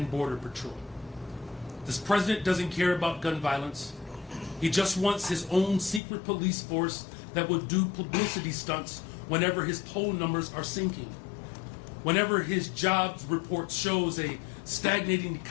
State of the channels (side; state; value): right; drops out; at 6.0 s